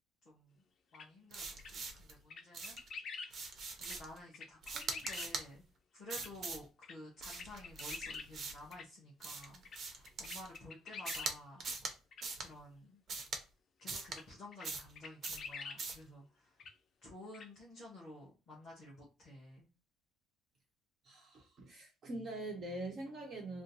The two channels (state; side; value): normal; both; correlation 0.67